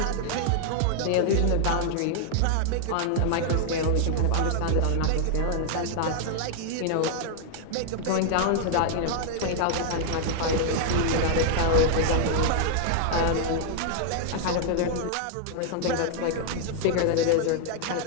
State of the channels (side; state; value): both; different; correlation -0.01